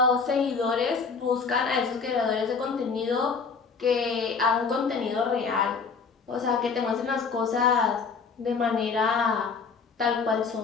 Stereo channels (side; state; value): right; quieter; 5.2 dB